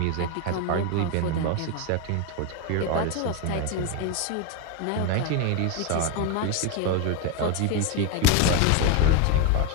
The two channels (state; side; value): different; both; correlation 0.02